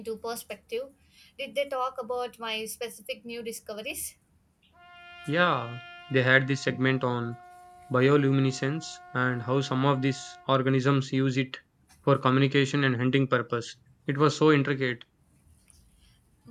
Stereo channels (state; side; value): identical; both; correlation 1.00